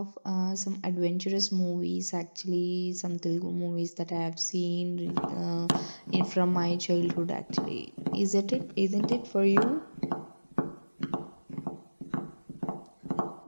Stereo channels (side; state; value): both; inverted; correlation -1.00